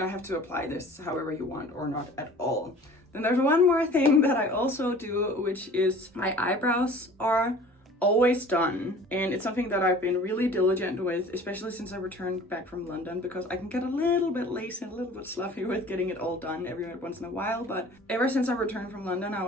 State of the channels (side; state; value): both; normal; correlation 0.46